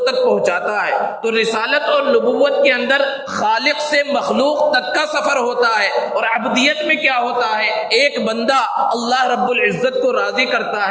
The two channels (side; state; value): both; identical; correlation 1.00